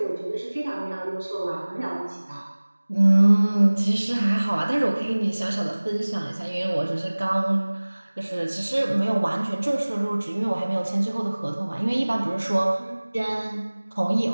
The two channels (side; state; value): both; inverted; correlation -1.00